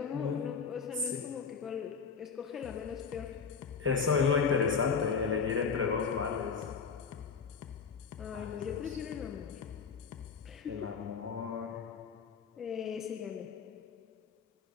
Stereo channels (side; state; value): right; quieter; 5.9 dB